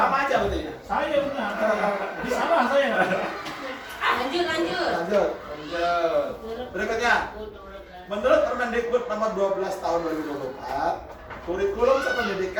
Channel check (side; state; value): both; identical; correlation 1.00